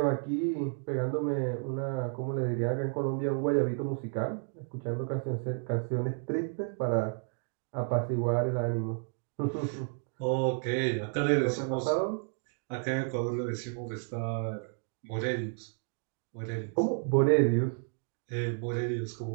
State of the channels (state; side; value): silent; left; 55 dB below the other